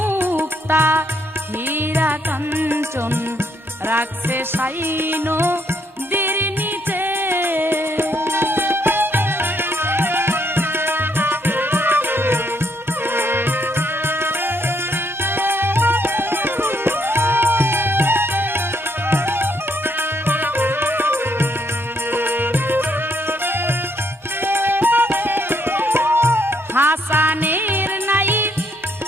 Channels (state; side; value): normal; both; correlation 0.73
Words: হীরা কাঞ্চন রাখছে সাইনো দির নিচে হাসানের নাই